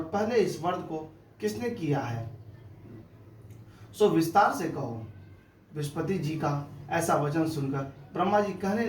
पहले इस व्रत को किसने किया है, सो विस्तार से कहो। बृहस्पति जी का ऐसा वचन सुनकर ब्रह्मा जी कहने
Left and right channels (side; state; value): both; identical; correlation 1.00